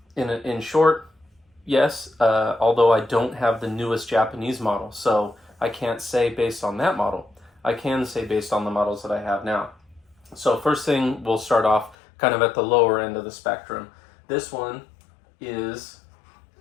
in short, yes, although I don't have the newest Japanese model, so I can't say based on that model. I can say based on the models that I have now. So first thing, we'll start off kind of at the lower end of the spectrum. This one is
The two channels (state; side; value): drops out; right; at 12.0 s